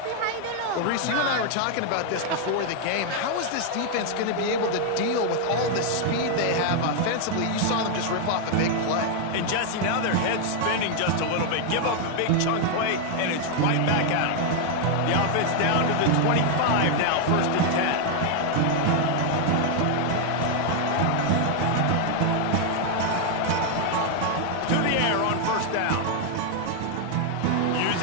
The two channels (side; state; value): both; different; correlation 0.00